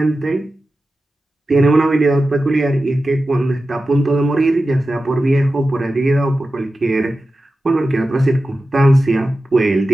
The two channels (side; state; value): both; normal; correlation 0.93